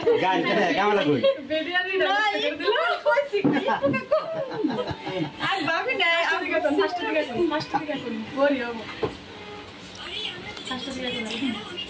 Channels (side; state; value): both; identical; correlation 1.00